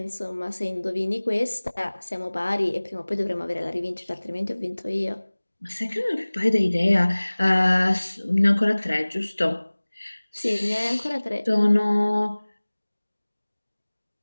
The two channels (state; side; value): inverted; both; correlation -1.00